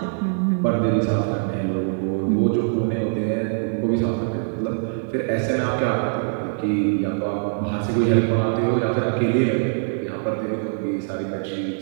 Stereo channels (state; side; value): silent; left; digital silence